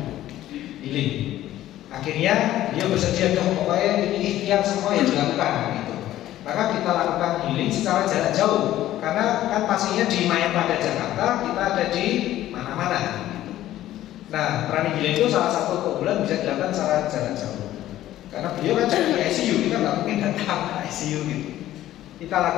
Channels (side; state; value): right; quieter; 13.7 dB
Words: healing. Akhirnya dia bersedia, pokoknya ini ikhtiar semua yang dilakukan gitu. Maka kita lakukan healing secara jarak jauh, karena kan pastinya di Mayapada Jakarta, kita ada di mana-mana. Nah, pranic healing itu salah satu keunggulan bisa dilakukan secara jarak jauh. Karena beliau kan di ICU, kita nggak mungkin datang ke ICU gitu. Kita